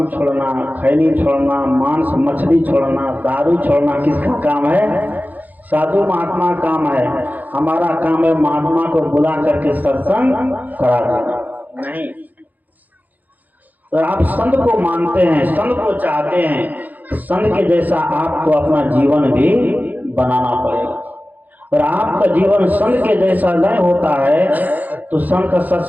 छोड़ना, खैनी छोड़ना, मांस मछली छोड़ना, दारू छोड़ना किसका काम है? साधु महात्मा काम है। हमारा काम है महात्मा को बुला करके सत्संग करा देना। नहीं, अगर आप संत को मानते हैं, संत को चाहते हैं, तो संत के जैसा आपको अपना जीवन भी बनाना पड़ेगा। अगर आपका जीवन संत के जैसा नहीं होता है तो संत का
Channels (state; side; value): late; left; 0.082 ms